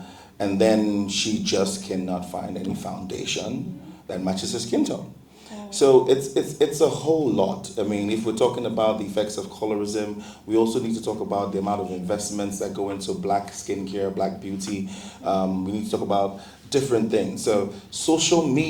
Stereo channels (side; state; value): both; identical; correlation 1.00